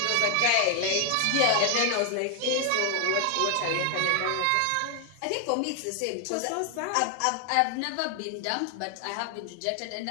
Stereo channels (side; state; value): both; different; correlation 0.00